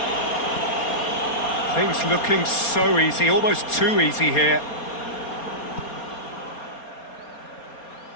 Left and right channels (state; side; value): late; right; 4.3 ms